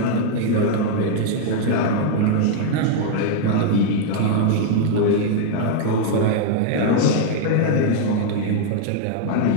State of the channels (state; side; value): different; both; correlation 0.00